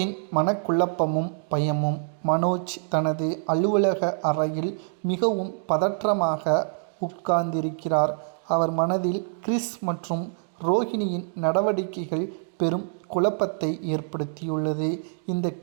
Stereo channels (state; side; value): silent; left; digital silence